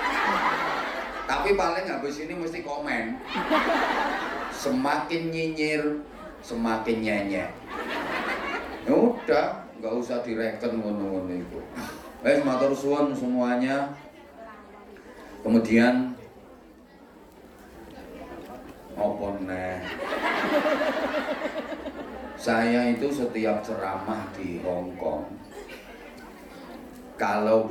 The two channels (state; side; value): identical; both; correlation 1.00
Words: tapi paling habis ini mesti komen. Semakin nyinyir, semakin nyenyek. Ya udah, nggak usah direken ngono-ngono itu. Matur suwun semuanya. Kemudian apa neh? Saya itu setiap ceramah di Hong Kong, kalau